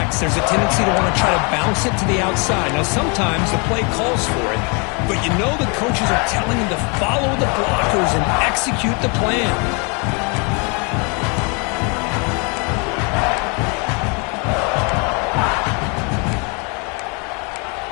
There's a tendency to want to try to bounce it to the outside. Now sometimes the play calls for it, but you know the coaches are telling them to follow the blockers and execute the plan.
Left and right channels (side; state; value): right; quieter; 33.2 dB